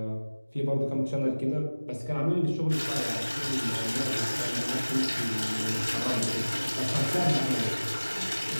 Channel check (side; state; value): both; inverted; correlation -1.00